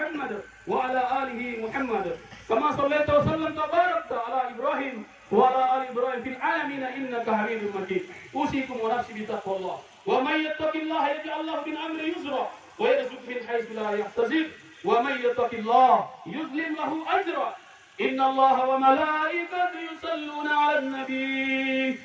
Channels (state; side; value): identical; both; correlation 1.00